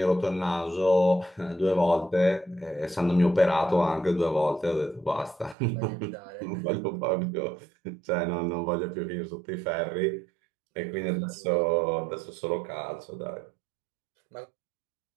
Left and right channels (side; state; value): left; drops out; at 5.6 s